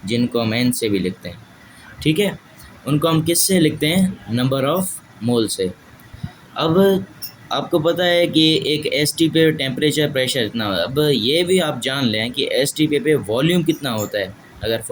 जिनको हम एन से भी लिखते हैं, ठीक है, उनको हम किस से लिखते हैं, नंबर ऑफ मोल से। अब आपको पता है कि एक एसटी पे टेम्परेचर प्रेशर इतना होता है। अब ये भी आप जान लें कि एसटी पे वॉल्यूम कितना होता है। अगर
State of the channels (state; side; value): identical; both; correlation 1.00